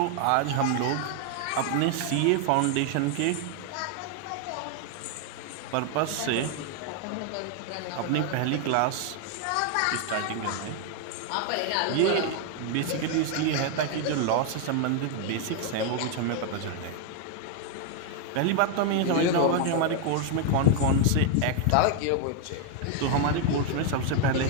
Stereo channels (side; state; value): both; different; correlation 0.00